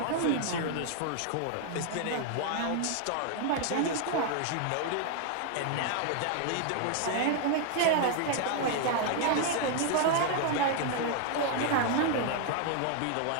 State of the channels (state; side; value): different; both; correlation 0.00